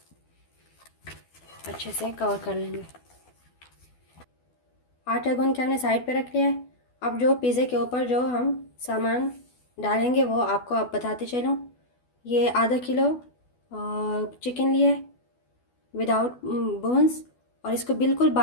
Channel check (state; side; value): late; right; 12 ms